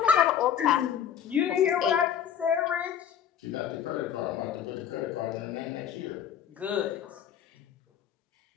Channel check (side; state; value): right; quieter; 9.1 dB